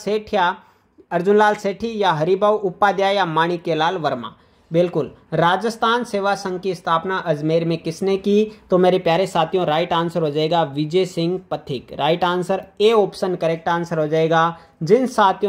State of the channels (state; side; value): identical; both; correlation 1.00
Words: अर्जुनलाल सेठी या हरिभाऊ उपाध्याय या माणिक्यलाल वर्मा? बिल्कुल राजस्थान सेवा संघ की स्थापना अजमेर में किसने की? तो मेरे प्यारे साथियों राइट आंसर हो जाएगा Vijay Singh Pathik. Right answer A option correct answer हो जाएगा। जिन